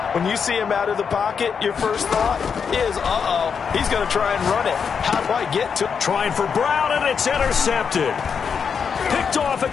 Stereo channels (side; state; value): right; quieter; 6.4 dB